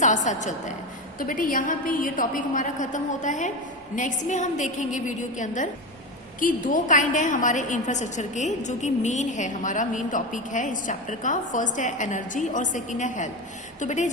साथ चलता है। तो बेटे यहाँ पे ये टॉपिक हमारा खत्म होता है। नेक्स्ट में हम देखेंगे वीडियो के अंदर कि 2 काइंड है हमारे इंफ्रास्ट्रक्चर के, जो कि मेन है, हमारा मेन टॉपिक है इस चैप्टर का। फर्स्ट है एनर्जी और सेकंड है हेल्थ। तो बेटे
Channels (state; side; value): normal; both; correlation 0.20